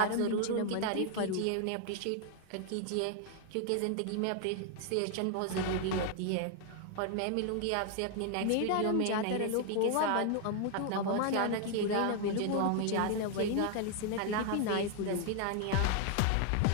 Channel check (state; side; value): different; both; correlation 0.00